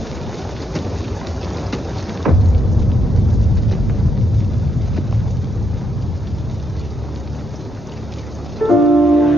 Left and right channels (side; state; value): both; normal; correlation 0.77